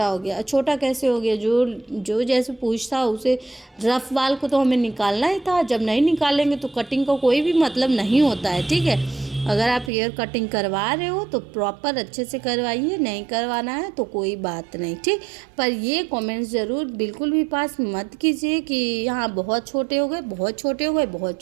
हो गया। छोटा कैसे हो गया, जो जैसे पूछ था उसे रफ वाल को तो हमें निकालना ही था, जब नहीं निकालेंगे तो कटिंग का कोई भी मतलब नहीं होता है, ठीक है। अगर आप हेयर कटिंग करवा रहे हो तो प्रॉपर अच्छे से करवाइए, नहीं करवाना है तो कोई बात नहीं, ठीक। पर ये कमेंट्स ज़रूर बिल्कुल भी पास मत कीजिए कि यहाँ बहुत छोटे हो गए, बहुत छोटे हो गए, बहुत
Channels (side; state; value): left; drops out; at 9.9 s